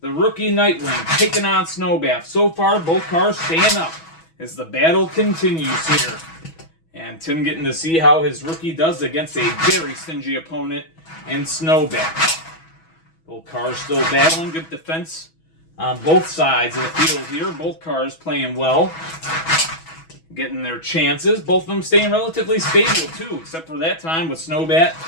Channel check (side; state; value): right; late; 6.2 ms